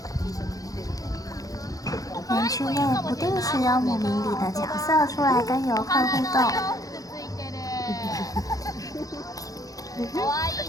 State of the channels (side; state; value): right; late; 0.17 ms